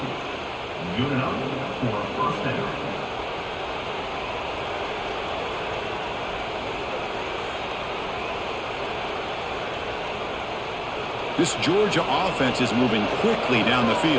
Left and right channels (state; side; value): identical; both; correlation 1.00